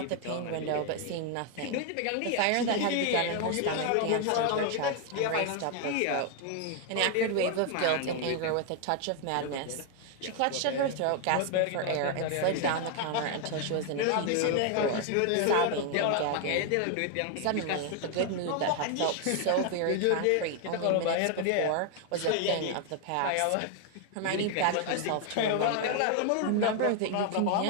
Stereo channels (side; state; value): both; different; correlation 0.00